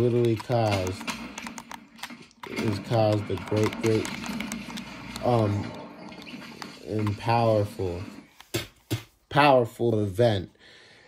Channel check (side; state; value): both; identical; correlation 1.00